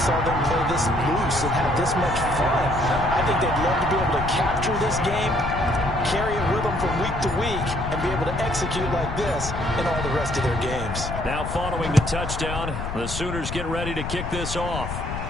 them play this loose and have this much fun. I think they'd love to be able to capture this game, carry it with them from week to week, and be able to execute like this in all the rest of their games. Now following the touchdown, the Sooners get ready to kick this off.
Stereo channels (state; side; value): noise; left; rumble, 6 dB below the sound